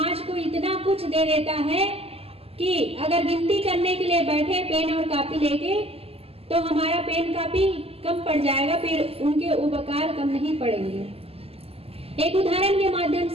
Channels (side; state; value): left; late; 0.29 ms